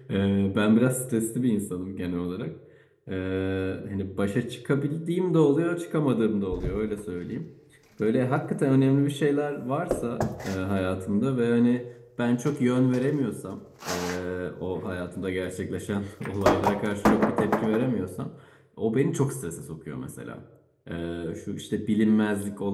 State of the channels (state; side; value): identical; both; correlation 1.00